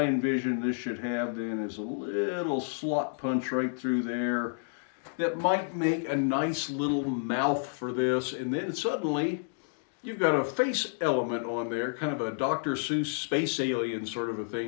envision this should have then is a little slot punch right through there that might make a nice little mouth for this, and then suddenly you've got a face element on there, kind of a Dr. Seuss space alien sort of a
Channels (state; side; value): silent; right; digital silence